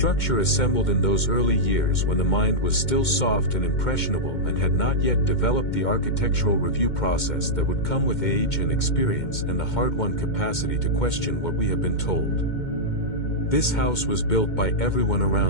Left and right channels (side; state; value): right; late; 2.2 ms